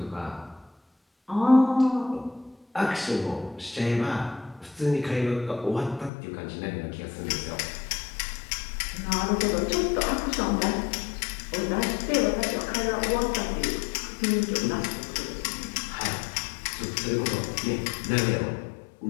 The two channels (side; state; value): right; drops out; at 6.1 s